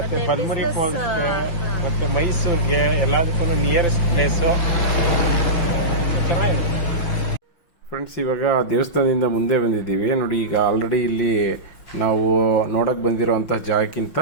ಬಲ್ಮುರಿ ಫಾಲ್ಸ್ ಮತ್ತೆ ಮೈಸೂರ್ಗೆ ಎಲ್ಲದಕ್ಕೂ ನಿಯರೆಸ್ಟ್ ಪ್ಲೇಸ್ ಚೆನ್ನಾಗಿರುತ್ತೆ. ಫ್ರೆಂಡ್ಸ್, ಇವಾಗ ದೇವಸ್ಥಾನದಿಂದ ಮುಂದೆ ಬಂದಿದ್ದೀವಿ ನೋಡಿ. ಈಗ ಆಲ್ರೆಡಿ ಇಲ್ಲಿ ನಾವು ನೋಡಕ್ ಬಂದಿರೋಂಥ ಜಾಗಕ್ಕಿಂತ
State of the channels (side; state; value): right; late; 5.9 ms